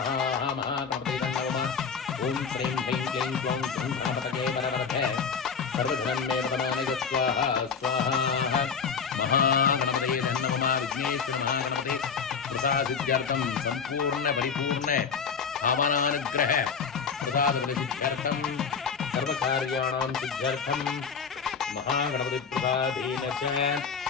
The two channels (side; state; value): right; quieter; 6.0 dB